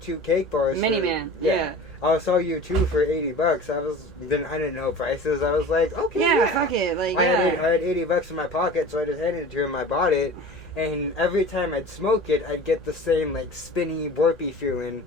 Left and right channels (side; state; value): both; normal; correlation 0.38